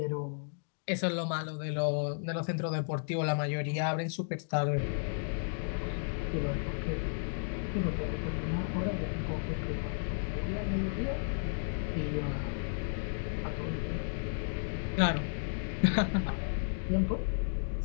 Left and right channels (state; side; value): silent; right; digital silence